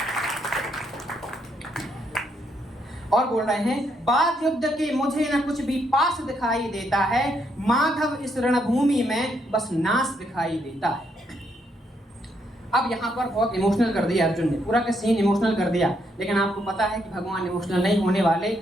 और बोल रहे हैं, बाद युद्ध के मुझे न कुछ भी पास दिखाई देता है, माधव इस रणभूमि में बस नाश दिखाई देता है। अब यहाँ पर बहुत इमोशनल कर दिया अर्जुन ने, पूरा का सीन इमोशनल कर दिया, लेकिन आपको पता है कि भगवान इमोशनल नहीं होने वाले,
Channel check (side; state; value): both; normal; correlation 0.75